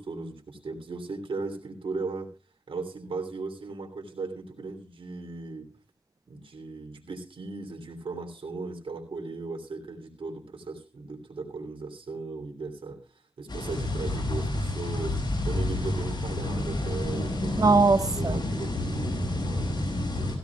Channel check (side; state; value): both; normal; correlation 0.77